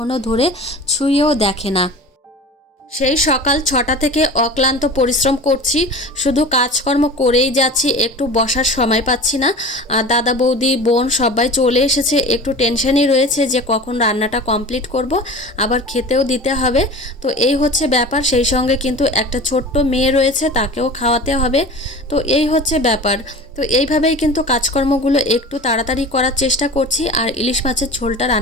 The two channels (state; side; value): normal; both; correlation 0.36